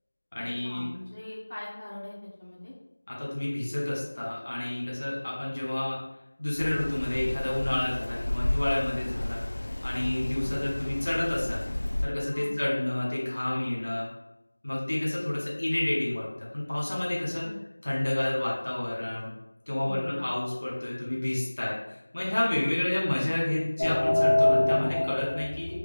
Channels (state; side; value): inverted; both; correlation -1.00